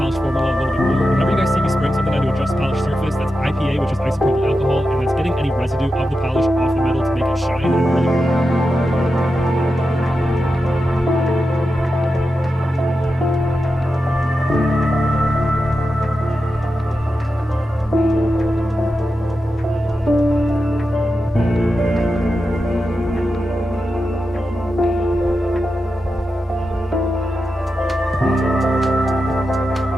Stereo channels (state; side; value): normal; both; correlation 0.90